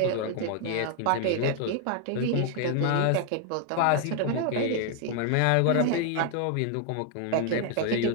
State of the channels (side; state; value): both; different; correlation 0.00